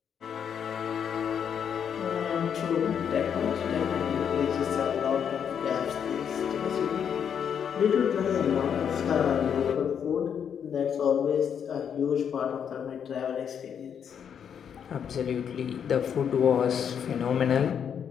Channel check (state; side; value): quieter; right; 7.9 dB